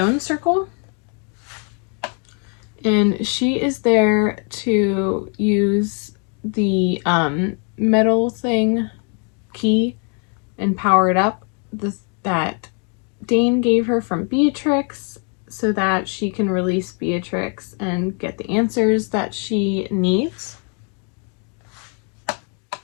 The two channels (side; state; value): right; quieter; 38.6 dB